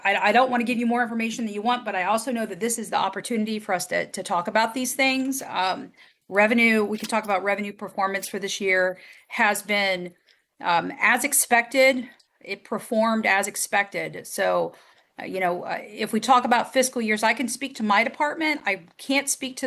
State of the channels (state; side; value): identical; both; correlation 1.00